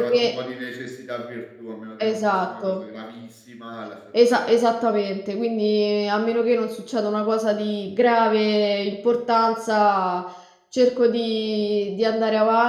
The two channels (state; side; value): identical; both; correlation 1.00